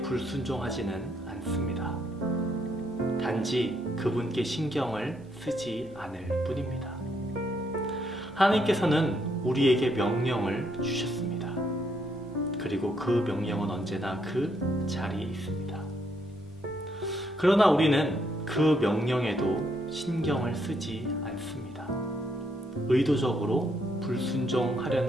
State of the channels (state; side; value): normal; both; correlation 0.74